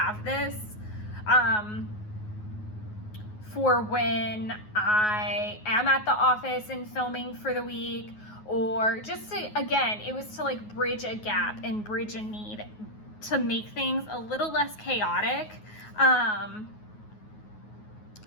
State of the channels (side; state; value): right; late; 9.4 ms